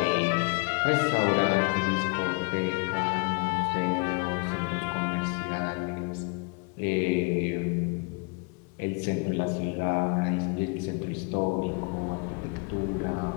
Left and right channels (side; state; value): right; quieter; 32.9 dB